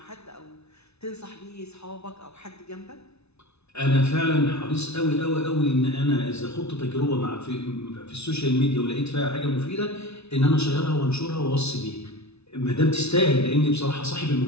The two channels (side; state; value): right; late; 0.80 ms